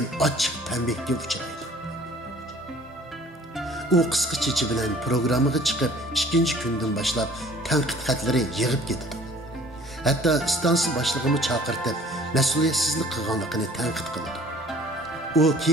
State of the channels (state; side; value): normal; both; correlation 0.52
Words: ochiq tanbehga uchraydi. U qisqa chechi bilan programmaga chiqib, 2-kundan boshlab tanqid xatlari yig'ib ketdi. Hatto stansiya boshlig'ini chaqirtib, mas'uliyatsizlik qilganligini tanqid qildi. U